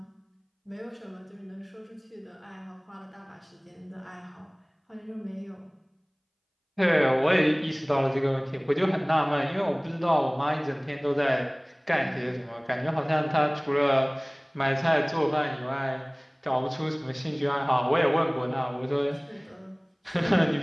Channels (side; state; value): both; identical; correlation 1.00